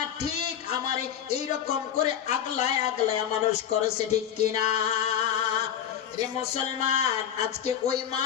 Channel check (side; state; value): right; quieter; 9.4 dB